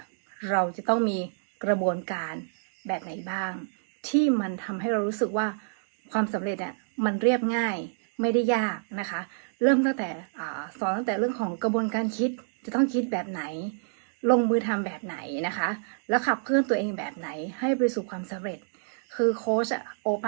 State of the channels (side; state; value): left; silent; digital silence